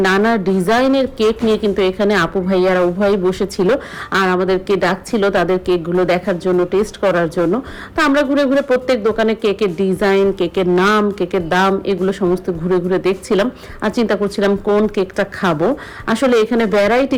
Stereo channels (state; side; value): identical; both; correlation 1.00